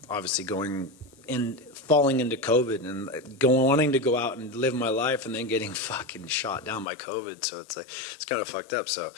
obviously falling into COVID and wanting to go out and live my life, and then getting fucking shot down by COVID. So it's kind of fucked up. So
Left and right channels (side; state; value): right; drops out; at 6.9 s